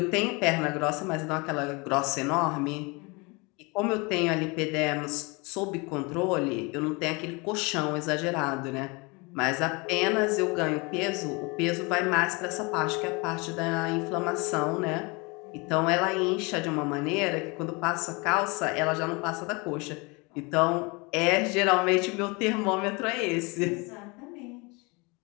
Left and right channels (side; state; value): right; quieter; 27.9 dB